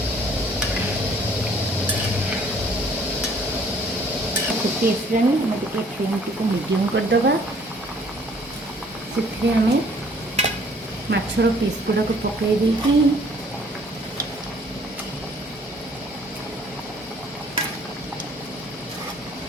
ଫୁଟି ଆସିଲାଣି, ଆମେ ଟିକେ ଫ୍ଲେମ୍ଟିକୁ ମିଡ଼ିୟମ୍ କରିଦେବା। ସେଥିରେ ଆମେ ମାଛର ପିସ୍ ଗୁଡ଼ାକୁ ପକାଇ ଦେଇକି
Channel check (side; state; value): both; normal; correlation 0.58